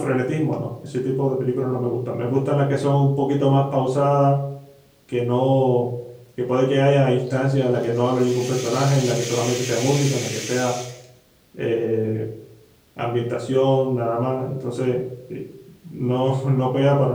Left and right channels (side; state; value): both; identical; correlation 1.00